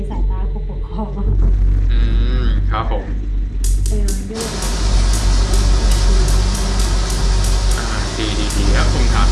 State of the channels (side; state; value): both; identical; correlation 1.00